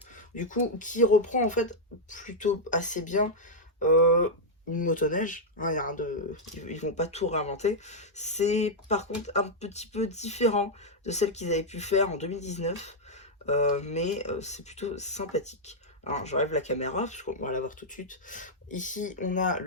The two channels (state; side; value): normal; both; correlation -0.04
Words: du coup, qui reprend en fait plutôt assez bien euh, une motoneige. Hein, y a rien de... Ils vont pas tout réinventer. C'est par contre un petit peu différent de celle qu'ils avaient pu faire en 2019, mais c'est plutôt sympathique. Alors, j'enlève la caméra, parce qu'on va la voir tout de suite. Ici, on a